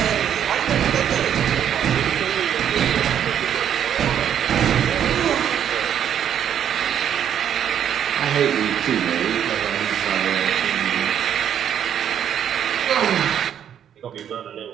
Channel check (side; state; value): left; quieter; 9.4 dB